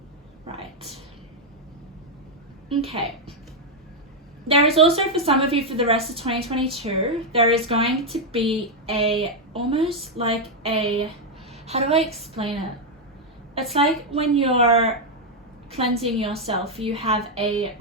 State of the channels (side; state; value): both; normal; correlation 0.01